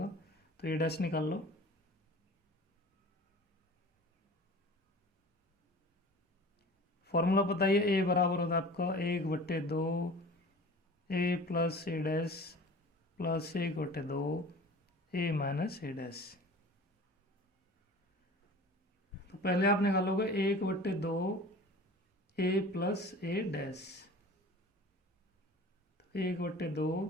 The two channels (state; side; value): normal; both; correlation 0.41